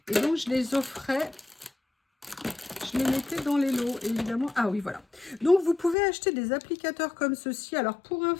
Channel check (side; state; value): right; drops out; at 6.0 s